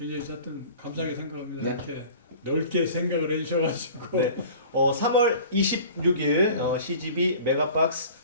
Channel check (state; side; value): inverted; both; correlation -0.44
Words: 하여튼 감사하게 생각합니다. 네. 이렇게 넓게 생각을 해주셔가지고. 네. 3월 26일 CGV 메가박스